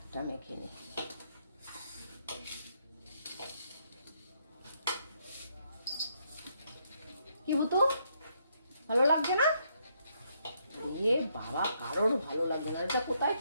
মেখে নিই। কি বুতু ভালো লাগছে না? এ বাবা, কারোর ভালো লাগছে না। এটা কোথায়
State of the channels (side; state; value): both; inverted; correlation -0.74